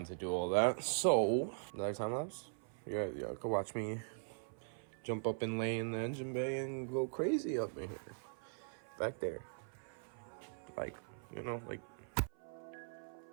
to do all that. So another time lapse. Yeah, go watch me jump up and lay in the engine bay and go crazy up in here, back there, like you know, like.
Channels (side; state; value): left; silent; 51 dB below the other